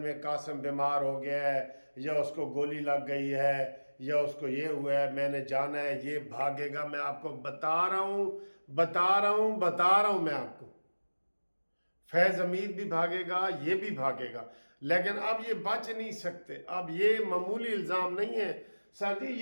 कासिम बीमार हो गया है, या उसको गोली लग गई है, या उसको ये हुआ है, मैंने जाना है, ये भागेगा। मैं आपको बता रहा हूँ मैं आपको, फैज हमीद भी भागेगा, ये भी भागेगा, लेकिन अब ये बच नहीं सकते। अब ये मामूली इल्ज़ाम नहीं है सर जी,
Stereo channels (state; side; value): inverted; both; correlation -1.00